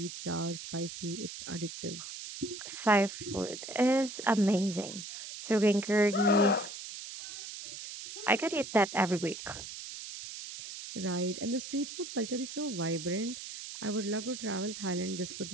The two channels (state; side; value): noise; right; hiss, 10 dB below the sound